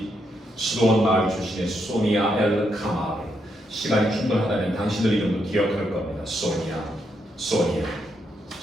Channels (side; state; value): both; normal; correlation 0.79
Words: 수도원 마을 출신의 소니아 엘카마르. 시간이 충분하다면 당신들 이름도 기억할 겁니다. 소니아.